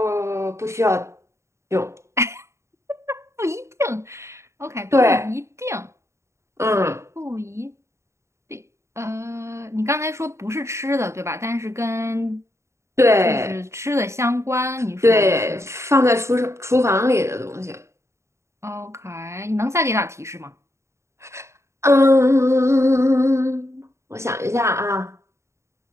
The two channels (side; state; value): left; late; 0.14 ms